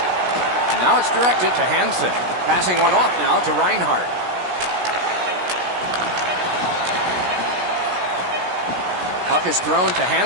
Now it's directed to Hansen. Passing one off now to Reinhart. Puck is thrown to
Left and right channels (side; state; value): left; late; 17 ms